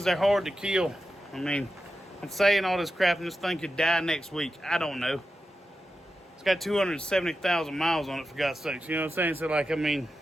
they're hard to kill. I mean, I'm saying all this crap and this thing could die next week. I don't know. It's got 270,000 miles on it, for God's sakes. You know what I'm saying? So, like, I mean,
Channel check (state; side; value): normal; both; correlation 0.91